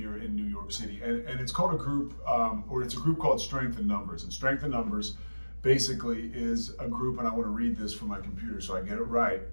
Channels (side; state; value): both; inverted; correlation -1.00